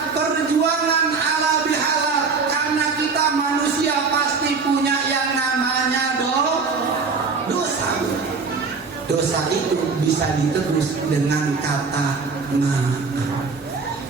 perjuangan ala bihalal. Karena kita manusia pasti punya yang namanya dosa. Dosa itu bisa ditebus dengan kata maaf.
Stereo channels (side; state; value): left; quieter; 4.8 dB